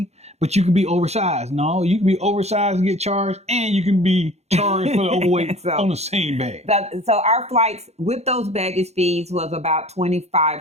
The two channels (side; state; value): left; late; 0.31 ms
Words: But you can be oversized. No, you can be oversized and get charged, and you can be charged for the overweight on the same bag. So our flights with those baggage fees was about